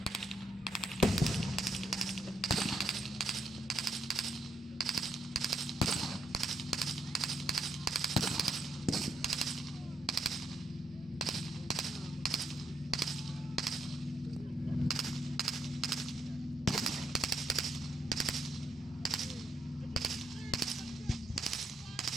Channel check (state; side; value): normal; both; correlation 0.76